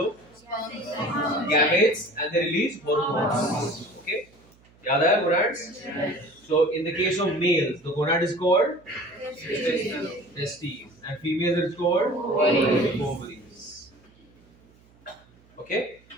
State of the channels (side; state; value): right; noise; hum, 29 dB below the sound